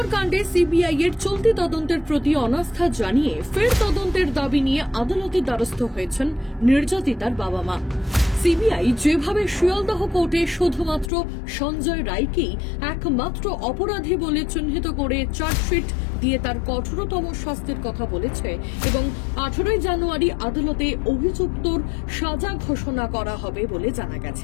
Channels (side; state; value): right; drops out; at 11.1 s